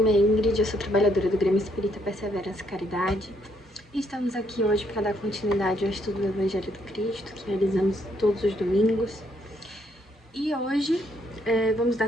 é Ingrid, eu sou trabalhadora do Grêmio Espírita Perseverança e Caridade e estamos aqui hoje para dar continuidade ao estudo do Evangelho do Cristo, que realizamos todos os domingos. E hoje vamos dar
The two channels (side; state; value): both; normal; correlation 0.72